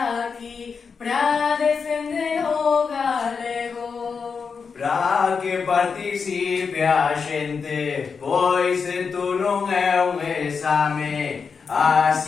aquí pra defender o galego. Pra que participe a xente, pois isto non é un exame.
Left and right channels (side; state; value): right; quieter; 5.6 dB